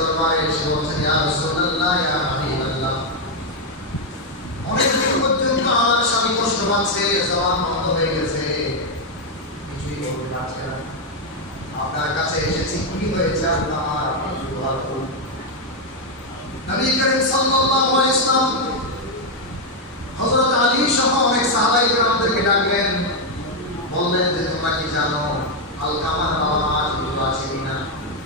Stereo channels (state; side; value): normal; both; correlation 0.01